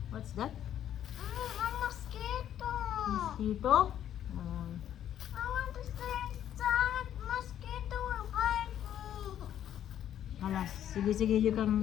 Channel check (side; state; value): right; quieter; 10.6 dB